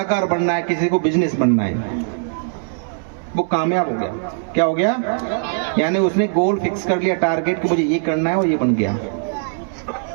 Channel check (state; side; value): silent; left; 66 dB below the other